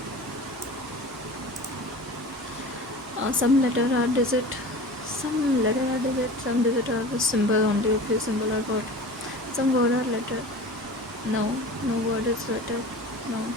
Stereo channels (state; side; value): normal; both; correlation 0.36